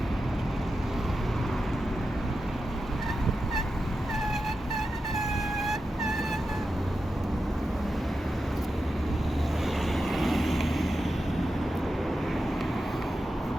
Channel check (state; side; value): normal; both; correlation 0.90